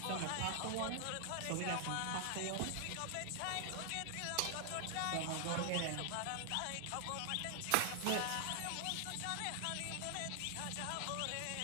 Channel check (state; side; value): different; both; correlation 0.00